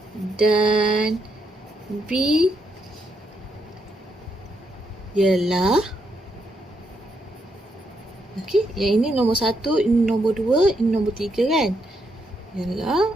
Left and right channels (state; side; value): normal; both; correlation 0.78